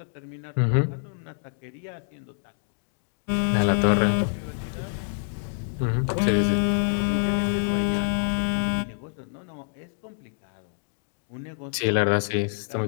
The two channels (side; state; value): right; silent; digital silence